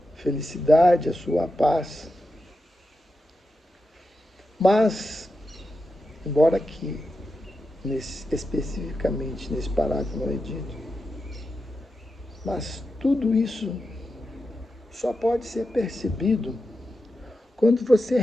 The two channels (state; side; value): normal; both; correlation 0.89